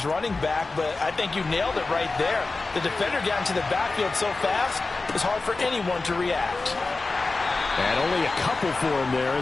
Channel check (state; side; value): quieter; right; 3.6 dB